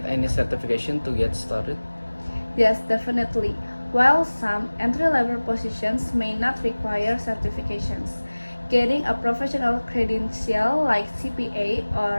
any certification to get started? Yes, definitely. While some entry-level positions may not require certifications, getting a professional credential like CPA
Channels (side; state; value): both; inverted; correlation -1.00